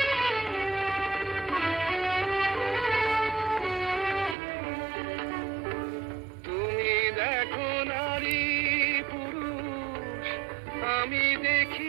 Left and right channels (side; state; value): left; drops out; at 4.4 s